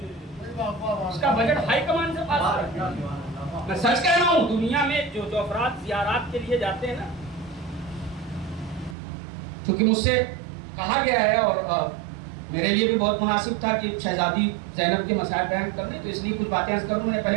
اس کا بجٹ ہائی کمان سے پاس ہوا ہے. میں سچ کہہ رہا ہوں, دنیا میں جو افراد زیارات کے لیے جاتے ہیں نا, کیونکہ مجھ سے کہا گیا ہے اور میرے لیے بھی بہت مناسب تھا کہ شہزادی زینب کے مسائل بیان کرنے, تو اس لیے کچھ باتیں عرض کروں. میں نے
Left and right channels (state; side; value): drops out; left; at 9.0 s